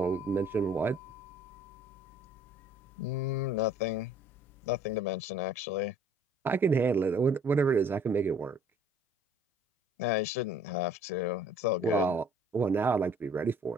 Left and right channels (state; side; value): normal; both; correlation 0.55